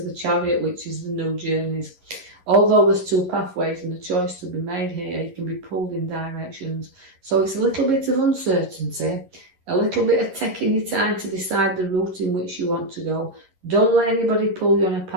the Chariot, which is the new journeys. Although there's two pathways and a choice to be made here, you can be pulled in directions. So it's a little bit of uncertainty, a little bit of taking your time to decide the route in which you want to go. Don't let anybody pull you on a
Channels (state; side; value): late; left; 11 ms